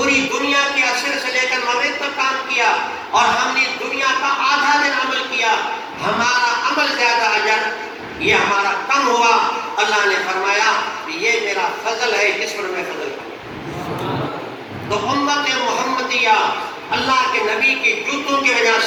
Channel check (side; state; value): both; identical; correlation 1.00